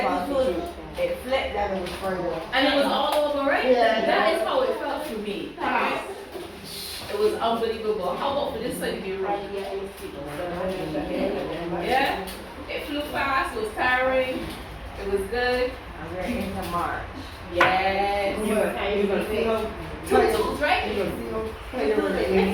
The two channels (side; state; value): both; identical; correlation 1.00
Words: It flipped that it was further. And it was all over, right? Yeah. That is how it felt for me. It was unbelievable. How about for this side of your room? Yeah? It flew fast, it was tiring, it was good. And we're into March. Yes. You're going to see them. Tutus, right?